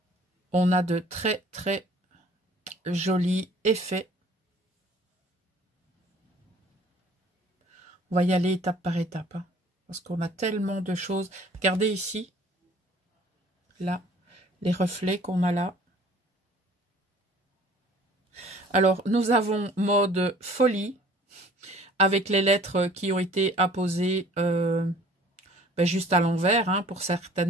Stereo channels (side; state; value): both; normal; correlation 0.52